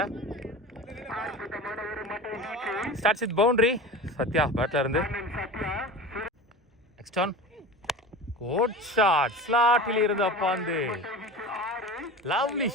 ஸ்டார்ட்ஸ் வித் பவுண்டரி சத்யா பேட்டில் இருந்து நெக்ஸ்ட் ஆன் கோட் ஷாட் ஸ்லாட்டில் இருந்து அப்பாந்து லவ்லி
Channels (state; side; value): normal; both; correlation 0.32